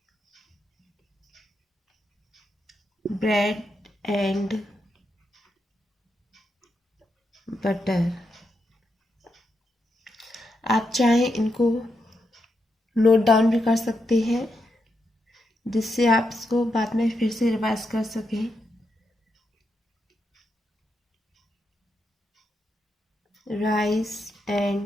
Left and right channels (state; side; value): normal; both; correlation 0.84